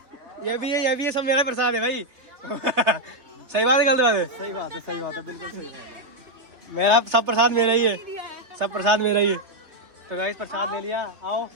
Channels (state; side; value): late; left; 3.3 ms